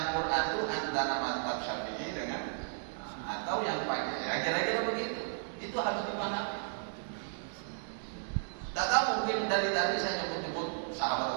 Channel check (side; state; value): left; silent; digital silence